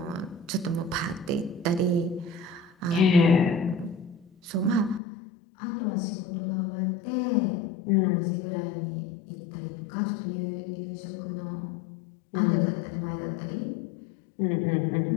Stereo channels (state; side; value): drops out; right; at 5.0 s